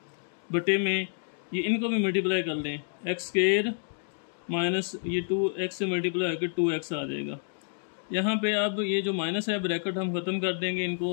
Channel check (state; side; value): silent; right; digital silence